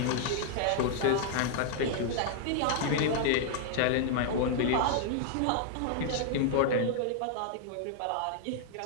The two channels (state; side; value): different; both; correlation -0.01